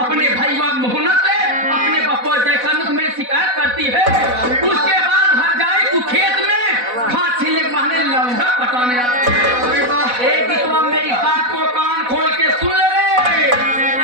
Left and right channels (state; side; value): late; left; 4.1 ms